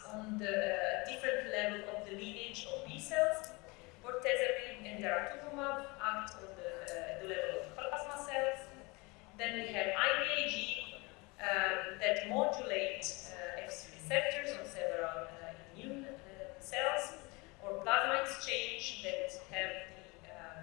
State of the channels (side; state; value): right; quieter; 26.2 dB